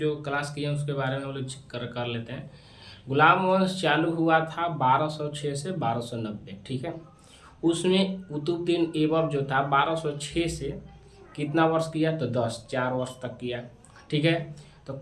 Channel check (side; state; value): both; identical; correlation 1.00